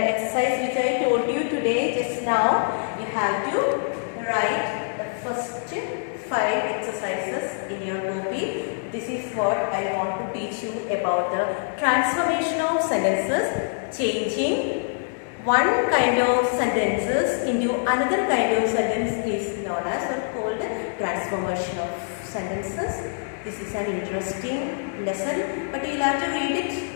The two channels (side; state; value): right; silent; 62 dB below the other